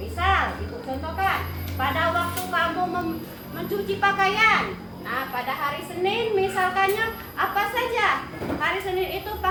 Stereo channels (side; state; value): both; identical; correlation 1.00